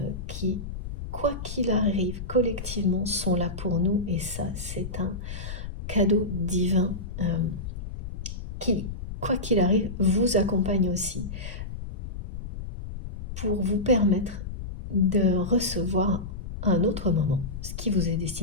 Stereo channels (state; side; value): noise; left; rumble, 7 dB below the sound